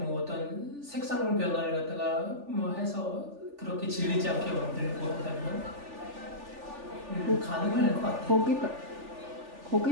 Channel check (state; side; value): late; left; 3.4 ms